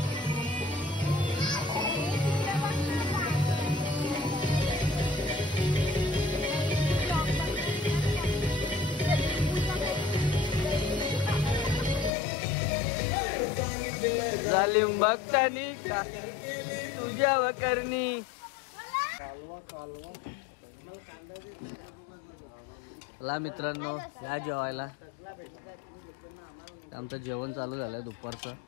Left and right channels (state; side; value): drops out; right; at 12.1 s